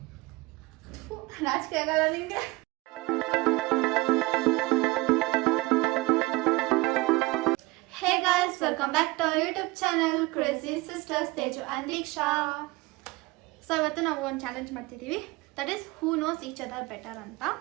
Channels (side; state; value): left; quieter; 22.6 dB